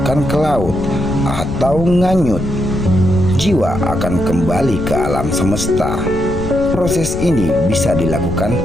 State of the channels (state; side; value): noise; left; rumble, 7 dB below the sound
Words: ke laut atau nganyut, jiwa akan kembali ke alam semesta. Proses ini bisa dilakukan